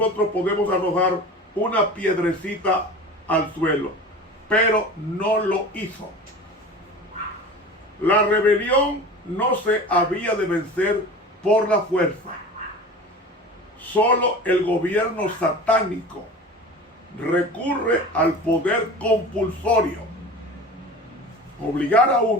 podemos arrojar una piedrecita al suelo, pero no lo hizo. La rebelión no se había de vencer por la fuerza. Solo el gobierno satánico recurre al poder compulsorio. Obligar a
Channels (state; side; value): normal; both; correlation 0.36